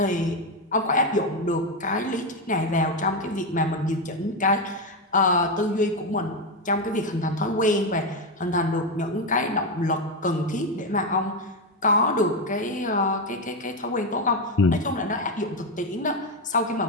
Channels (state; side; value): normal; both; correlation 0.09